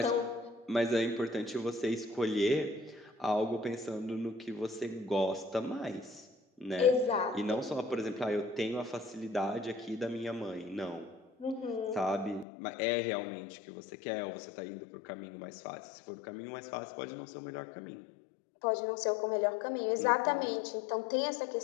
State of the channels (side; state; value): right; drops out; at 12.5 s